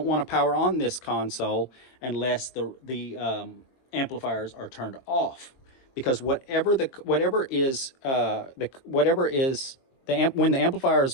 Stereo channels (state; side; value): late; right; 22 ms